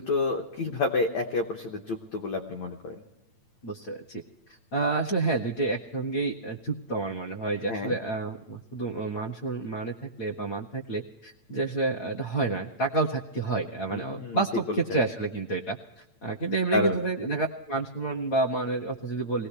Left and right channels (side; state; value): right; late; 8.9 ms